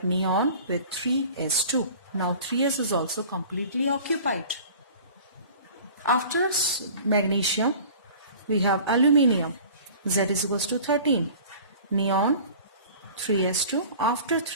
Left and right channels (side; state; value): both; inverted; correlation -0.44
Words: neon with 3s2. Now 3s is also completely occupied. After magnesium we have aluminium. Z is equals to 13. Neon 3s2. After